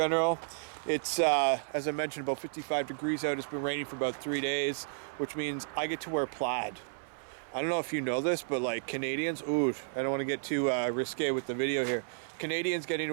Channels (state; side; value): silent; left; 56 dB below the other